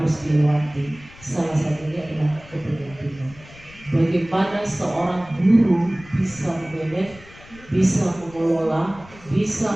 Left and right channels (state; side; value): noise; left; rumble, 21 dB below the sound